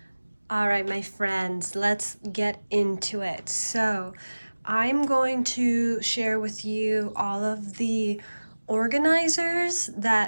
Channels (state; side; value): inverted; both; correlation -1.00